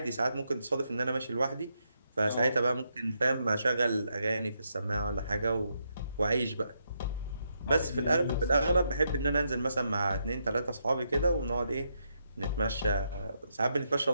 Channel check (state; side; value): inverted; both; correlation -0.80